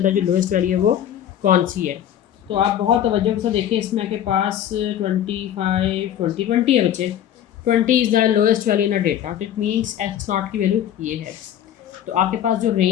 जो लोएस्ट वैल्यू है वो कौन सी है। तो आप बहुत तवज्जो से देखें, इसमें आपके पास 25, 20, 20 है बच्चे। 20 is the lowest value in a data, it means x not की वैल्यू ये है। तो आपके पास जो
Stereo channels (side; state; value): right; quieter; 10.5 dB